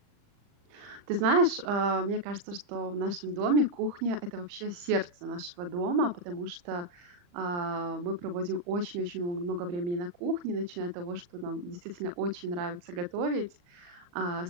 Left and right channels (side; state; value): left; late; 40 ms